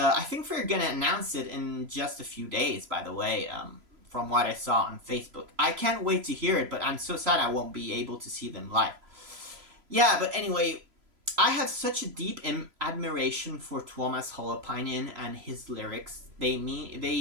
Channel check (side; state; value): left; late; 3.0 ms